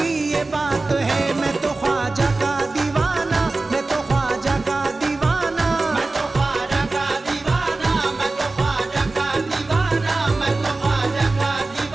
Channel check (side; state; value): left; quieter; 3.3 dB